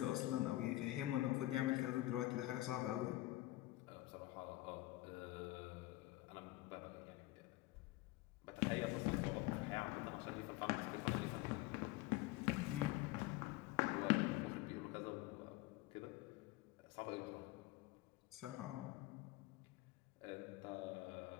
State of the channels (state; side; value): quieter; right; 17.9 dB